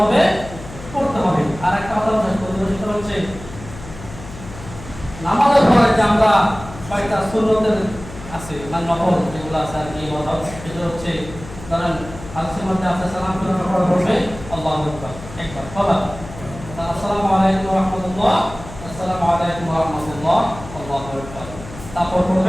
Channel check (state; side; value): noise; left; hum, 14 dB below the sound